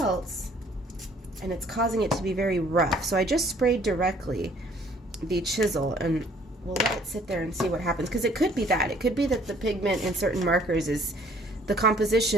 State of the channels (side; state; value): both; normal; correlation 0.59